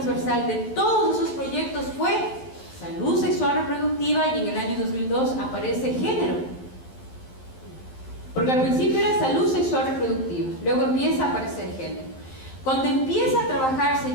de todos esos proyectos fue salud sexual reproductiva, y en el año 2002 aparece género. Porque al principio era salud sexual reproductiva, luego empieza a aparecer género. Cuando empieza a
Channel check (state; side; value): late; right; 11 ms